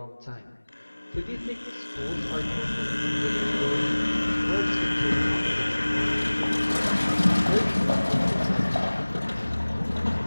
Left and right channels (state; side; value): inverted; both; correlation -1.00